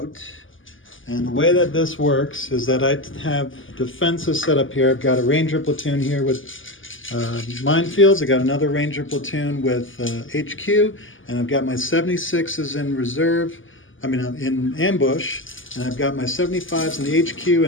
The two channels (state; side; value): late; right; 0.58 ms